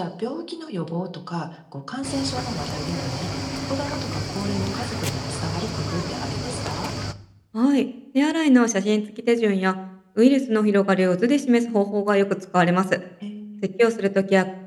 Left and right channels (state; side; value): identical; both; correlation 1.00